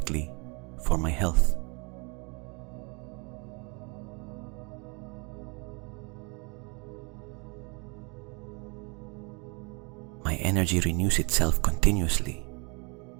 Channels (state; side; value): quieter; left; 31.6 dB